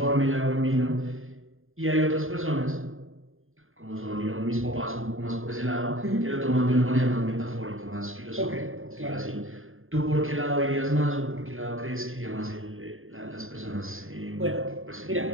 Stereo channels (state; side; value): late; left; 0.60 ms